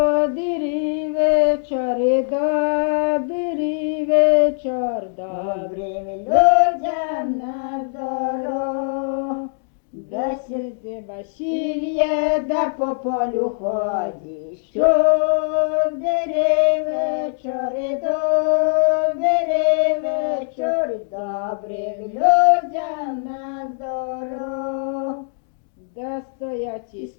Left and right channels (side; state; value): right; silent; digital silence